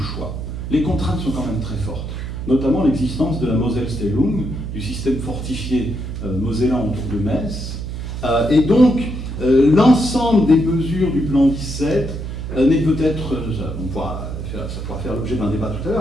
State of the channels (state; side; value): noise; right; hum, 6 dB below the sound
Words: choix. Les contraintes sont quand même très fortes, notamment l'existence de la Moselle-Stellung, du système fortifié mosellan autour de Metz. Et donc, l'ensemble des mesures du plan 17 n'est peut-être, ça pourra faire l'objet d'un débat tout à